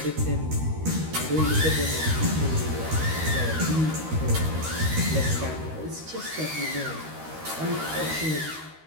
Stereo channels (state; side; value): late; left; 13 ms